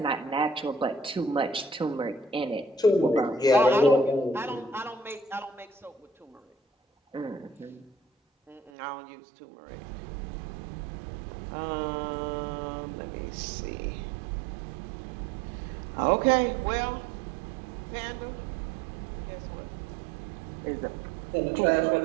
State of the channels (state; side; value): drops out; left; at 8.7 s